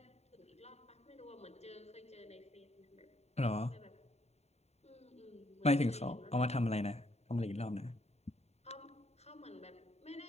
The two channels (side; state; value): right; late; 0.31 ms